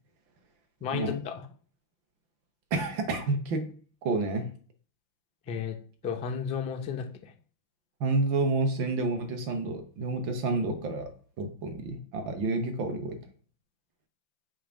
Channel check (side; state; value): left; late; 5.8 ms